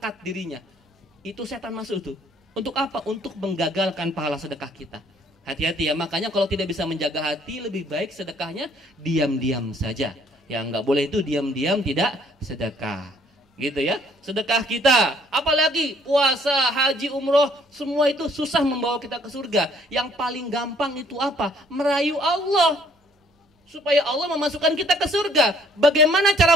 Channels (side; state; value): both; normal; correlation 0.61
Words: dirinya. Itu setan masuk tuh. Untuk apa? Untuk menggagalkan pahala sedekah kita. Hati-hati ya, makanya kalau tidak bisa menjaga hati, lebih baik sedekahnya diam-diam saja. Yang nggak boleh itu diam-diam tidak sedekah. Gitu ya, sedekah kita. Apalagi puasa, haji, umroh, semua itu susah membawa kita ke surga. Yang paling gampang itu apa? Merayu Allah. Supaya Allah memasukkan kita ke surga. Bagaimana cara